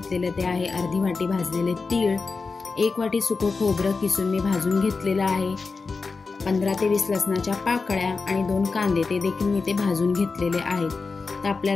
ते आहे अर्धी वाटी भाजलेले तीळ, 1 वाटी सुकं खोबरं किसून मी भाजून घेतलेलं आहे, 15 ते 20 लसणाच्या पाकळ्या आणि 2 कांदे ते देखील मी ते भाजून घेतलेले आहेत। तर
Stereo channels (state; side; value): quieter; right; 4.3 dB